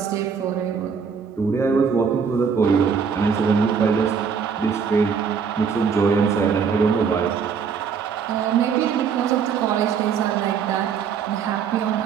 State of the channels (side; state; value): left; quieter; 6.4 dB